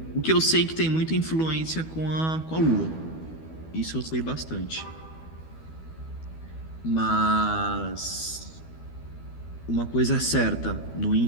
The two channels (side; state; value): right; late; 12 ms